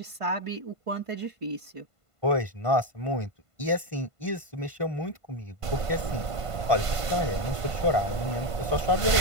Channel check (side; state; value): left; late; 1.5 ms